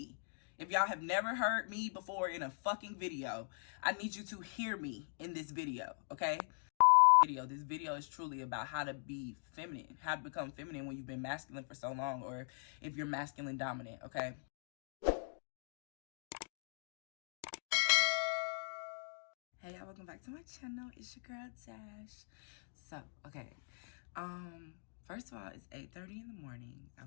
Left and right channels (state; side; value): silent; right; digital silence